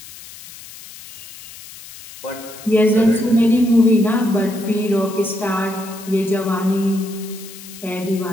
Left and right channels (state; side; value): noise; left; hiss, 17 dB below the sound